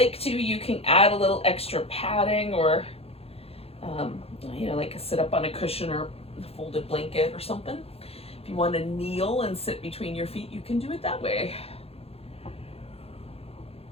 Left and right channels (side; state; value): right; late; 0.29 ms